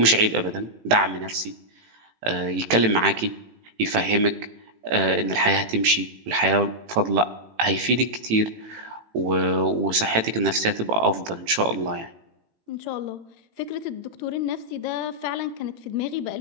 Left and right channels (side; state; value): left; late; 18 ms